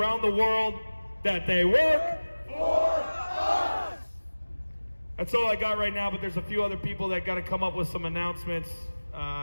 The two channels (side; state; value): both; inverted; correlation -1.00